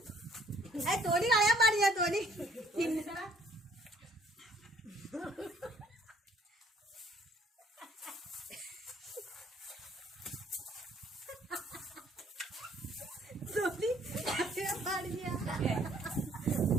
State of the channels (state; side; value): normal; both; correlation 0.61